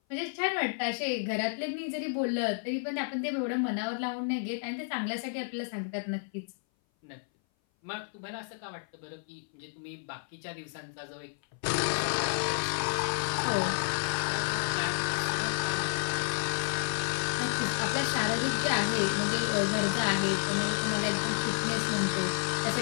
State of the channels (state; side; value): silent; right; 57 dB below the other